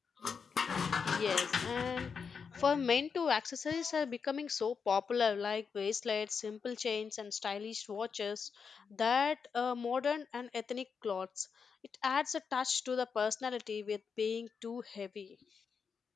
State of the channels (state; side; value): quieter; right; 5.9 dB